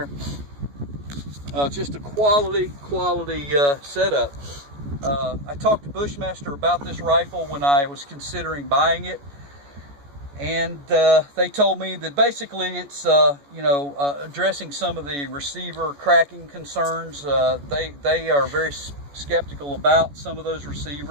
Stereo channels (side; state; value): left; late; 14 ms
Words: Just a quality setup. I talked to Bushmaster about this rifle when I was considering buying it, and they told me that basically it's addressing some of the receiver cracking concerns. They are very skeptical about some of those